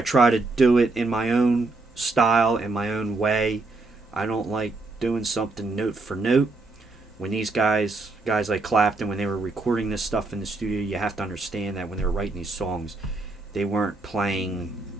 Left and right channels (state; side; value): quieter; left; 3.4 dB